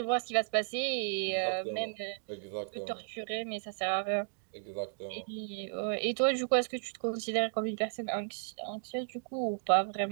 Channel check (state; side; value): silent; left; digital silence